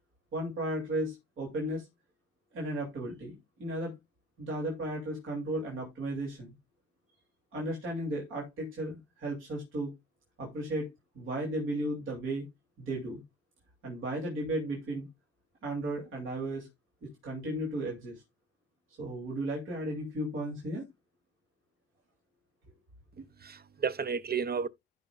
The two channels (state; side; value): normal; both; correlation 0.44